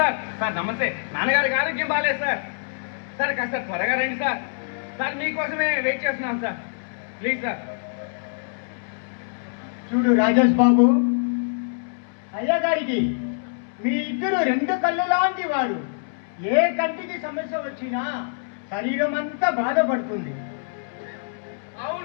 సార్. సార్ నమస్తే. నాన్నగారికి ఆరోగ్యం బాగాలేదు సార్. సార్ కాస్త త్వరగా రండి సార్. సార్ మీకోసమే వెయిట్ చేస్తున్నాం సార్. Please sir. చూడు రాజేష్ బాబు, అయ్యగారికి మీ ఇద్దరు రెండు కళ్ళు లాంటి వారు. ఏ కంటికి సమస్య వచ్చినా శరీరం అంతా బాధపడుతుంది.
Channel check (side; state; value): right; silent; 62 dB below the other